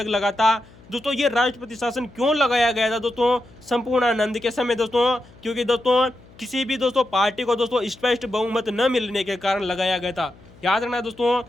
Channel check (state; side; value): noise; left; hum, 24 dB below the sound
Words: लगा था दोस्तों। ये राष्ट्रपति शासन क्यों लगाया गया था दोस्तों संपूर्णानंद के समय दोस्तों? क्योंकि दोस्तों किसी भी दोस्तों पार्टी को दोस्तों स्पष्ट बहुमत न मिलने के कारण लगाया गया था। याद रखना दोस्तों,